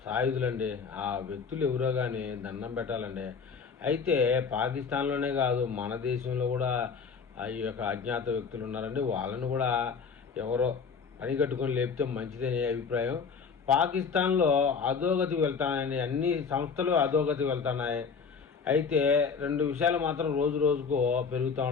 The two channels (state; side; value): quieter; right; 5.7 dB